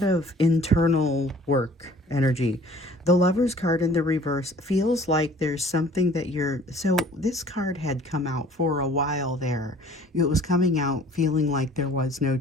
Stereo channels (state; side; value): normal; both; correlation 0.52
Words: of internal work energy. The Lover's card in the reverse feels like there's something that so this card had come out for a while there. It was coming out feeling like there was no